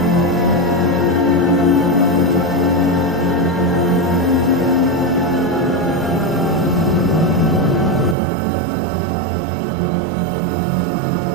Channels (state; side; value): drops out; left; at 8.2 s